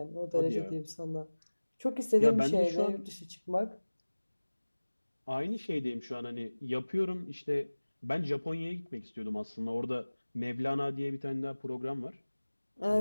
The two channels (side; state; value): both; inverted; correlation -1.00